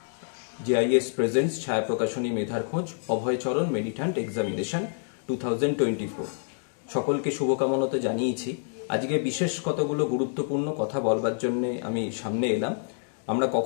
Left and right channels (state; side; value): silent; right; digital silence